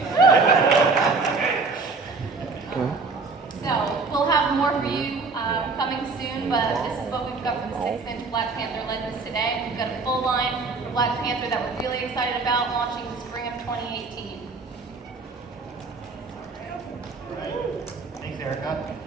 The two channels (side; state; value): left; quieter; 4.2 dB